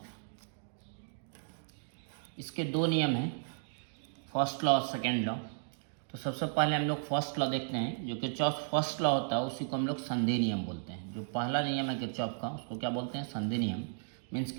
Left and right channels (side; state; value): left; silent; digital silence